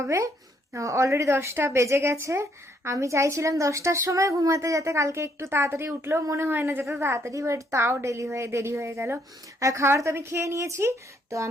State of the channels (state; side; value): normal; both; correlation 0.70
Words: অলরেডি 10টা বেজে গেছে। আমি চাইছিলাম 10টার সময় ঘুমাতে, যাতে কালকে একটু তাড়াতাড়ি উঠলেও মনে হয় না যেতে তাড়াতাড়ি, বাট তাও দেরি হয়ে গেল। আর খাবার তো আমি খেয়ে নিয়েছি। তো